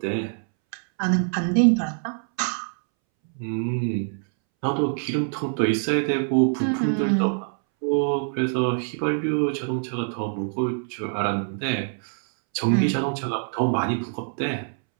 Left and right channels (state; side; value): silent; left; 62 dB below the other